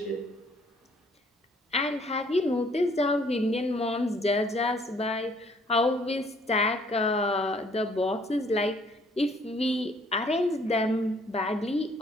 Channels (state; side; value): normal; both; correlation 0.62